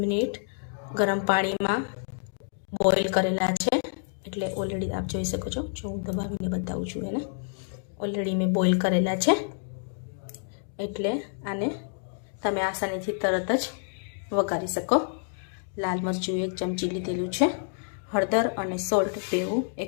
મિનિટ ગરમ પાણીમાં બોઇલ કરેલા છે। એટલે ઓલરેડી આપ જોઈ શકો છો, જો હું દબાવીને બતાવું છું એને, ઓલરેડી મેં બોઇલ કરેલા છે। એટલે આને તમે આસાનીથી તરત જ વઘારી શકો। લાલ મરચું 1 ચમચી લીધેલું છે, હળદર અને સોલ્ટ બેવું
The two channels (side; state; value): right; silent; digital silence